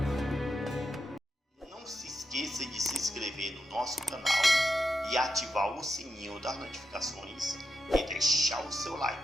Não se esqueça de se inscrever no nosso canal e ativar o sininho das notificações e deixar o seu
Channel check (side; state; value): both; normal; correlation 0.86